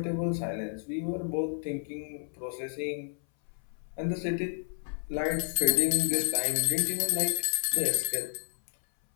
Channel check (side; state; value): right; silent; 57 dB below the other